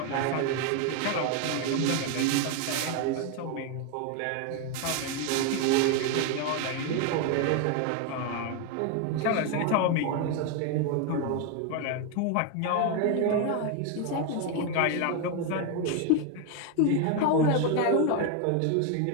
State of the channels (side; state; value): both; different; correlation 0.01